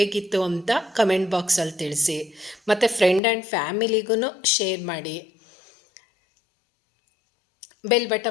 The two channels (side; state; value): right; drops out; at 3.2 s